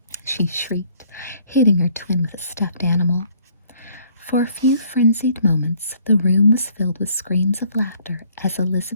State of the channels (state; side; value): inverted; both; correlation -0.62